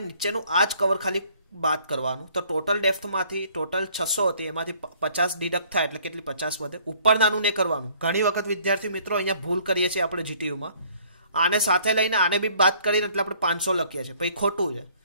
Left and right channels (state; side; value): inverted; both; correlation -0.59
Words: નીચેનું આ જ કવર ખાલી બાદ કરવાનું. તો ટોટલ ડેપ્થમાંથી ટોટલ 600 હતી, એમાંથી 50 ડિડક્ટ થાય એટલે કેટલી 50 વધે. ઉપર નાનું નહીં કરવાનું. ઘણી વખત વિદ્યાર્થી મિત્રો અહીંયા ભૂલ કરીએ છીએ આપણે જીટીયુમાં. આને સાથે લઈને આને બી બાદ કરીને એટલે આપણે 500 લખીએ છીએ, પછી ખોટું છે.